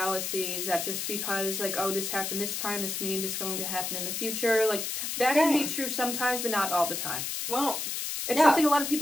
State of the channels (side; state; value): left; noise; hiss, 3 dB below the sound